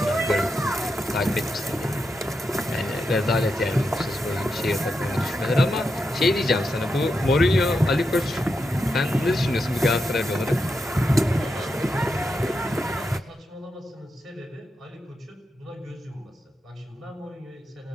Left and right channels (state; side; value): normal; both; correlation 0.86